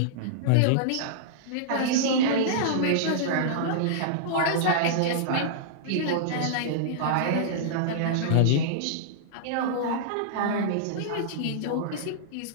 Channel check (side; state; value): both; different; correlation -0.02